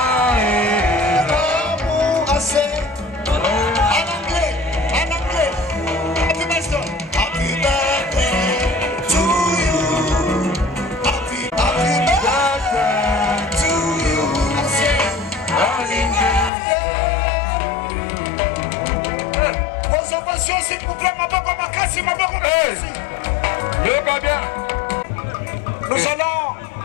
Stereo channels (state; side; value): drops out; right; at 16.5 s